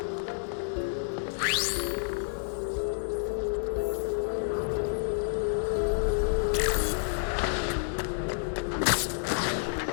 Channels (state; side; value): silent; right; digital silence